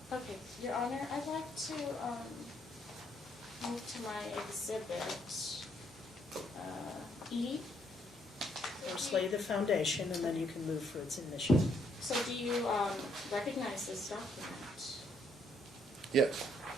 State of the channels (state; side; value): normal; both; correlation 0.71